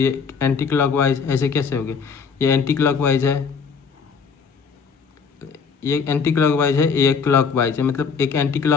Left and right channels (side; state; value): right; quieter; 5.8 dB